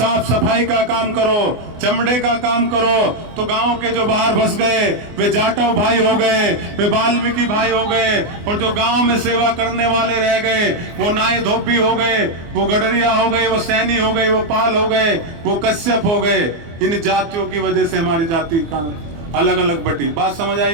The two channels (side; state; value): left; late; 24 ms